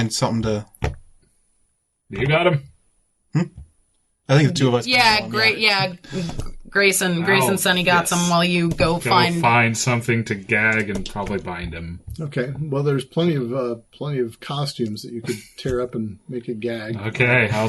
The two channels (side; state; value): both; identical; correlation 1.00